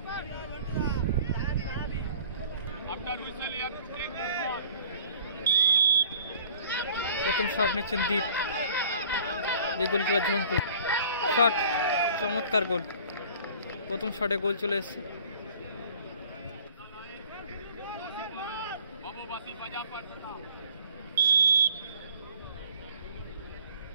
প্রথম শট নিচ্ছেন দীপ, যে গোলকিপার ঝন্টু। শট, চমৎকার গোল। প্রথম শটে গোল চলে এসছে।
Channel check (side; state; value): both; inverted; correlation -0.50